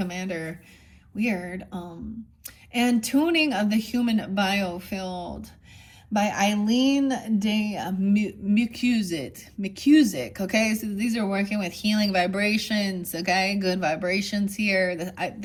Weird. And Tuning of the Human Biofield by Eileen de McCusick. Okay, so these are working with healing vibrations. Okay, good vibrations here.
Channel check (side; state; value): both; identical; correlation 1.00